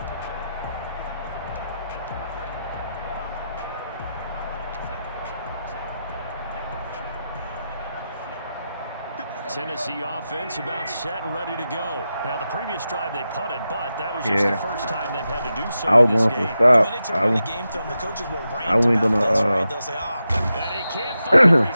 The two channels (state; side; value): inverted; both; correlation -0.90